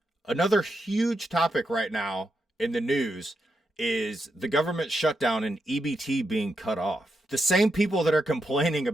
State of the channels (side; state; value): both; normal; correlation 0.84